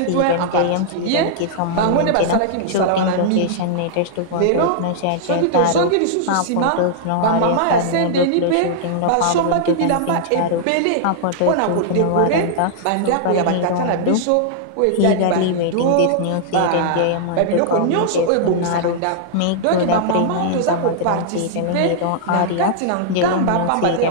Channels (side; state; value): both; different; correlation -0.01